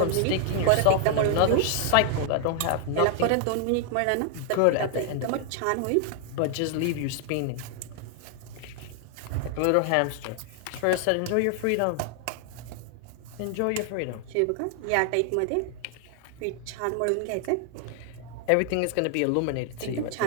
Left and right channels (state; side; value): different; both; correlation 0.00